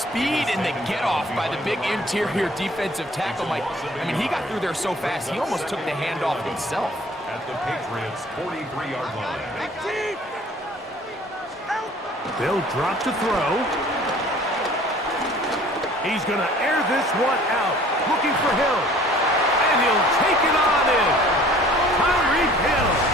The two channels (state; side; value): normal; both; correlation 0.52